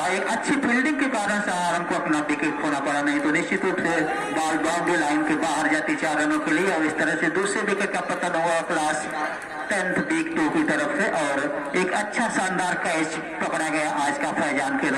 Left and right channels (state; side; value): identical; both; correlation 1.00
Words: एक अच्छी फील्डिंग के कारण शाह आलम को अपना विकेट खोना पड़ा, नहीं तो निश्चित रूप से बॉल बाउंड्री लाइन के बाहर जाती 4 रनों के लिए, और इस तरह से दूसरे विकेट का पतन हुआ क्लास 10th B2 की तरफ से। और एक अच्छा शानदार कैच पकड़ा गया आज का फैजान के